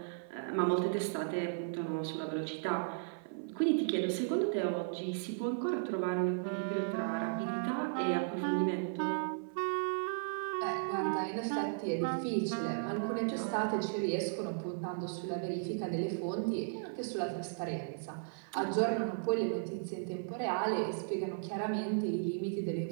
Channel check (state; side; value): silent; left; 54 dB below the other